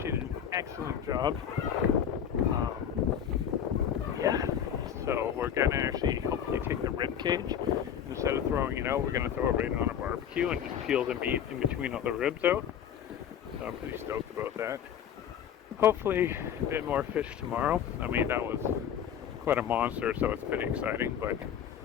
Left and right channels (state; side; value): quieter; right; 8.9 dB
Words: She did an excellent job. Yeah. So we're gonna actually hopefully take the rib cage. Instead of throwing it out, we're gonna throw it right on a barbecue and just peel the meat in between all the ribs out. So I'm pretty stoked about that. Hopefully a bit more fish tomorrow. I mean, that was quite a monster, so it's pretty exciting, but